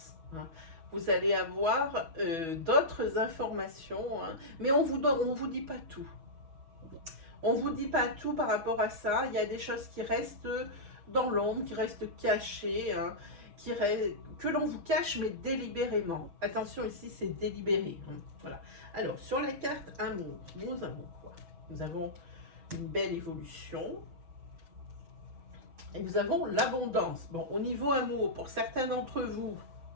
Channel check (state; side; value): late; left; 6.1 ms